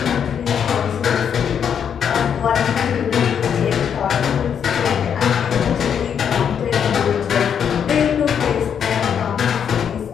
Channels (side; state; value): right; quieter; 7.9 dB